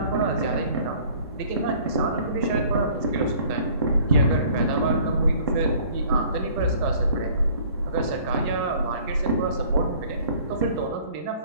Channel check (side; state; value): both; inverted; correlation -0.53